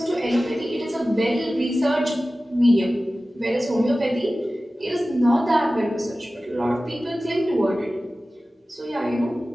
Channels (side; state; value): both; normal; correlation 0.96